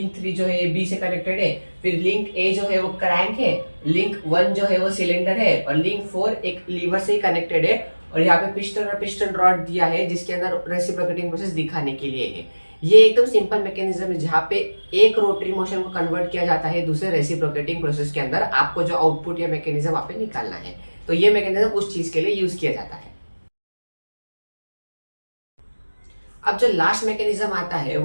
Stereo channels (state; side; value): inverted; both; correlation -1.00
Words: 3 जो है बी से कनेक्टेड है, फिर लिंक ए जो है वो क्रैंक है, लिंक 1 जो है वो सिलेंडर है, और लिंक 4 एक लीवर से ही कनेक्टेड है, और यहाँ पे पिस्टन और पिस्टन रॉड दिया है जिसके अंदर रेसिप्रोकेटिंग प्रोसेस दिखाने के लिए है। ये एकदम सिंपल मैकेनिज्म है जहाँ पे एक रोटरी मोशन को कन्वर्ट किया जाता है दूसरे रेसिप्रोकेटिंग प्रोसेस के अंदर। आपको जो आउटपुट या मैकेनिज्म वहां पे निकालना है, तो ये मैकेनिज्म उस चीज के लिए यूज किया जाता है। अब जो लास्ट मैकेनिज्म आता है